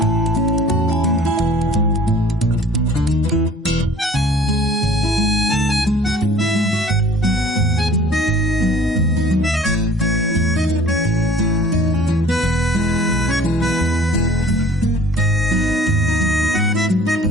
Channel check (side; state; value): both; normal; correlation 0.51